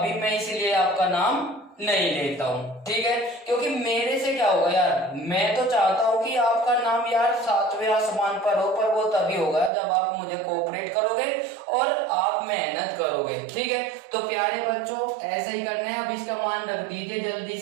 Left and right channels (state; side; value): drops out; left; at 9.7 s